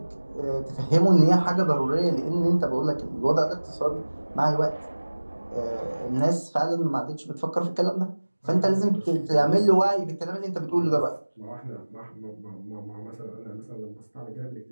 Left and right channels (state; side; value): inverted; both; correlation -1.00